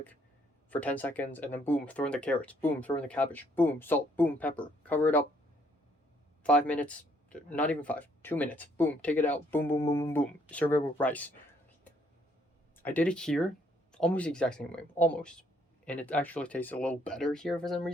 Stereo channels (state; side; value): normal; both; correlation 0.67